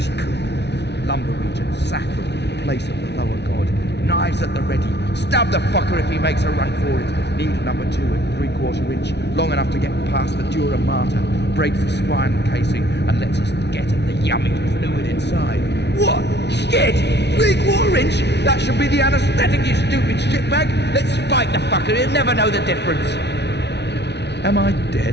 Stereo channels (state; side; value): late; right; 0.50 ms